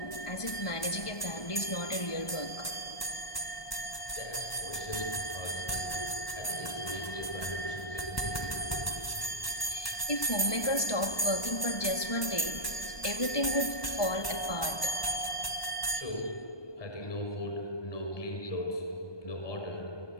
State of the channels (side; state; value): right; late; 1.2 ms